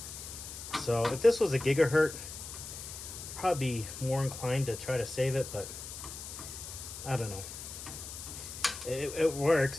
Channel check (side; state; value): left; noise; hiss, 10 dB below the sound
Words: So if this was a gigahertz, I'd probably be more inclined to try to save it, but I don't know. It works,